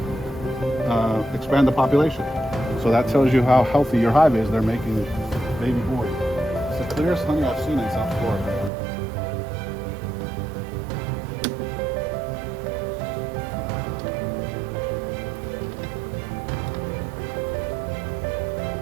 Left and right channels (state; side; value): drops out; left; at 8.7 s